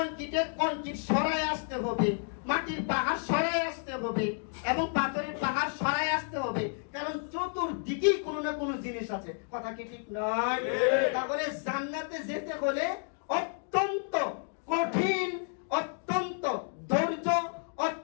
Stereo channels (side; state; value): right; silent; 57 dB below the other